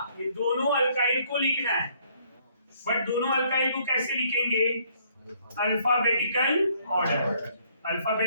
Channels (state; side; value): inverted; both; correlation -0.65